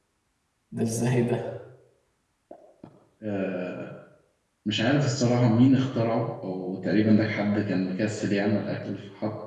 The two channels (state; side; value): identical; both; correlation 1.00